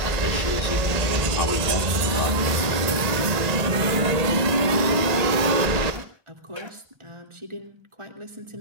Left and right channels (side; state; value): left; late; 1.8 ms